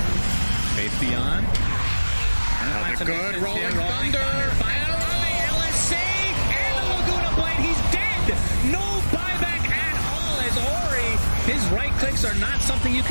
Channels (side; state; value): both; inverted; correlation -1.00